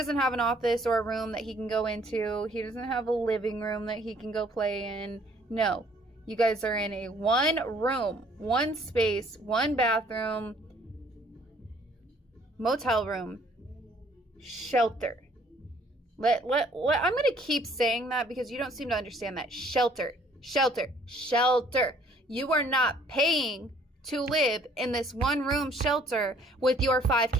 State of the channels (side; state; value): both; normal; correlation 0.60